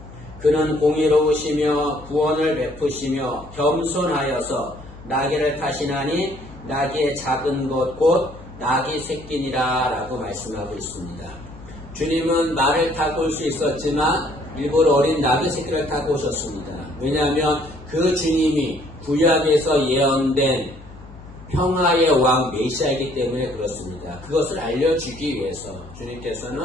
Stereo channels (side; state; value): left; noise; hum, 18 dB below the sound